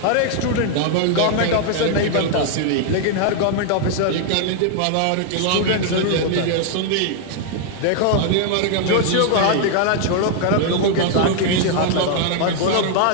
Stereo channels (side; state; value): both; different; correlation 0.00